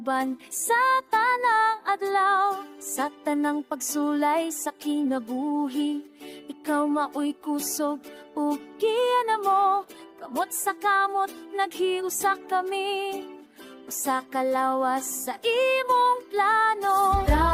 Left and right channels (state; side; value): identical; both; correlation 1.00